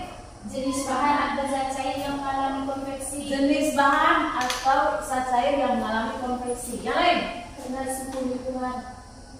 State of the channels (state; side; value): identical; both; correlation 1.00